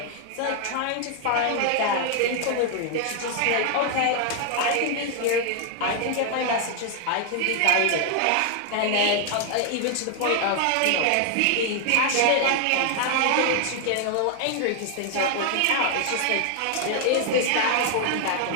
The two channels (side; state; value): both; different; correlation 0.00